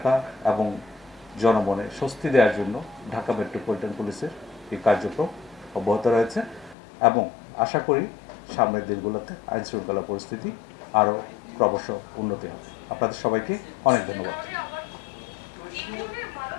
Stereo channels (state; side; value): drops out; right; at 6.8 s